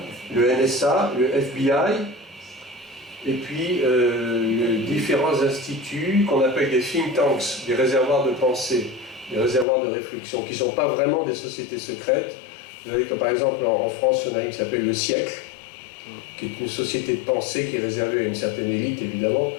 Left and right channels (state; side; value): drops out; right; at 9.7 s